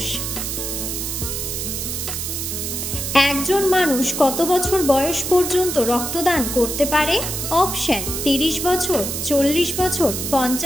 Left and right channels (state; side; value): noise; right; hiss, 4 dB below the sound